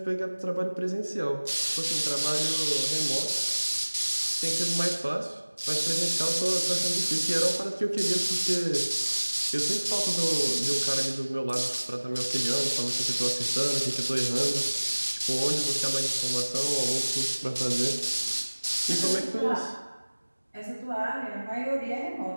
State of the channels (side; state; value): both; inverted; correlation -1.00